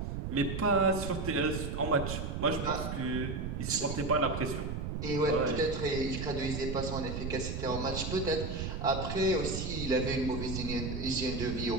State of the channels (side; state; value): right; noise; rumble, 4 dB below the sound